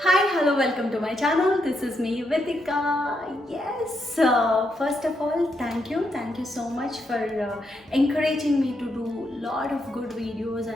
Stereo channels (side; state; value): both; normal; correlation 0.80